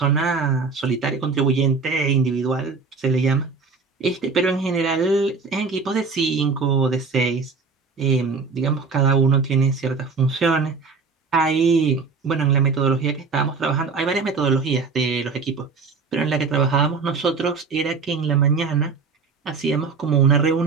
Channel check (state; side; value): quieter; left; 4.7 dB